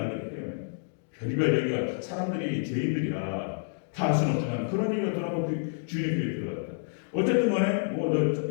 때문에 별의별 얘기가 사람들이 죄인들이라 다 할 수는 없지만 그런 얘기가 돌아가고 주인의 귀에 들어갔다. 어쨌든 간에 너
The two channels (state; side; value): silent; right; digital silence